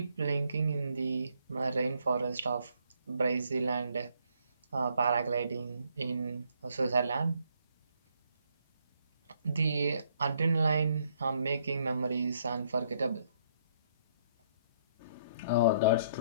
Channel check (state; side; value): inverted; both; correlation -0.70